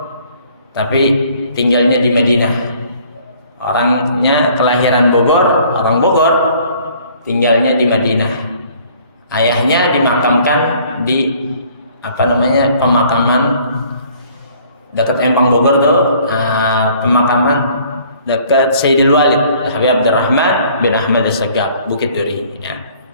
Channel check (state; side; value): inverted; both; correlation -0.57